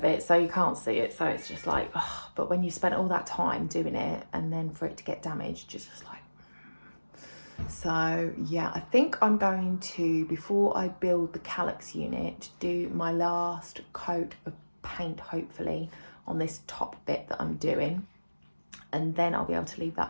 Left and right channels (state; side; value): inverted; both; correlation -1.00